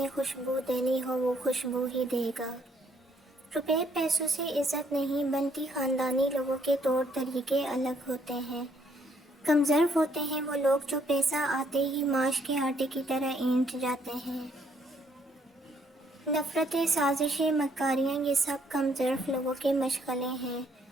خوشبو دینی ہو وہ خوشبو ہی دے گا۔ روپے پیسوں سے عزت نہیں بنتی، خاندانی لوگوں کے طور طریقے الگ ہوتے ہیں۔ کمظرف ہوتے ہیں وہ لوگ جو پیسہ آتے ہی ماش کے آٹے کی طرح اینٹ جاتے ہیں۔ نفرتیں، سازشیں، مکاریاں، یہ سب کم ظرف لوگوں کے مشغلے ہیں۔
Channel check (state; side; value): normal; both; correlation 0.68